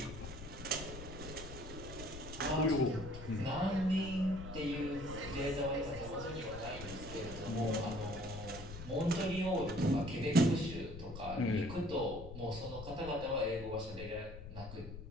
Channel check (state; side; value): noise; left; rumble, 11 dB below the sound